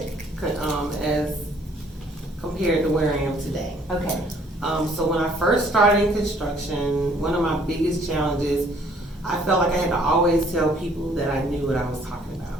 as compared to where I am today. Okay. So when I first started in construction, one of my biggest challenges, I felt like I had to always tell people that I knew what I was talking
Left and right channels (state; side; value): normal; both; correlation 0.60